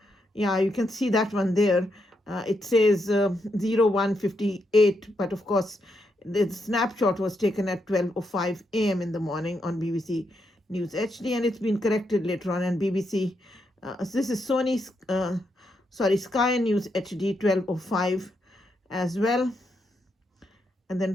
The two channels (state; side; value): normal; both; correlation 0.81